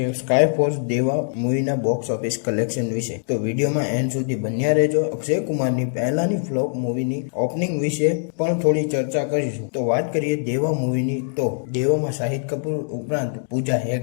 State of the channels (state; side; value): silent; right; digital silence